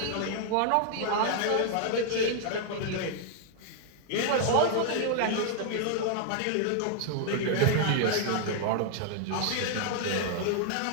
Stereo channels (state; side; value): different; both; correlation 0.00